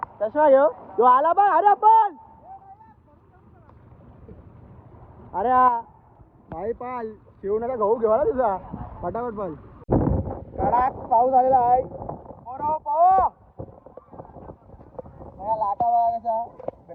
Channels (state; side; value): identical; both; correlation 1.00